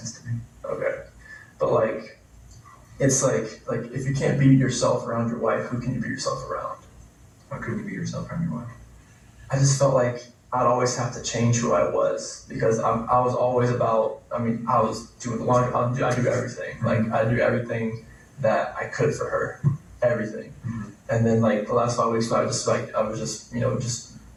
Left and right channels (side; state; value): both; identical; correlation 1.00